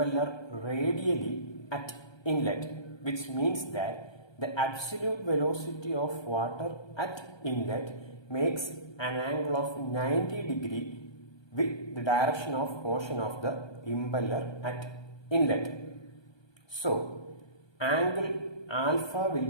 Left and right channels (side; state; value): right; late; 1.3 ms